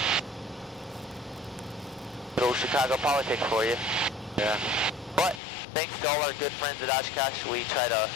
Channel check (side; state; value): right; drops out; at 5.4 s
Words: Little Chicago politics for you. Yeah. But thanks to all our good friends at Oshkosh, we try to